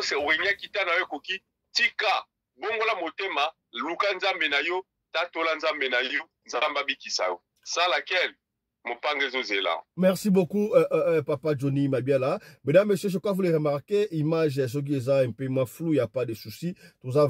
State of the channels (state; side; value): identical; both; correlation 1.00